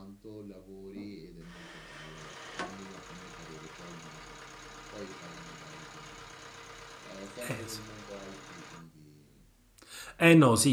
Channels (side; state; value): both; identical; correlation 1.00